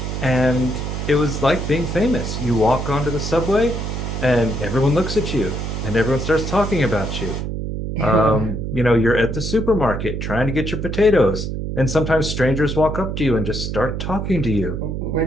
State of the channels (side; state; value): right; noise; hum, 4 dB below the sound